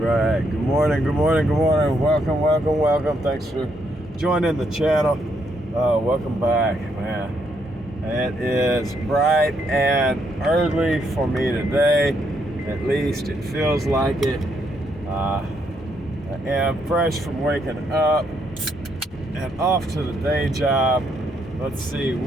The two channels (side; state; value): both; normal; correlation 0.75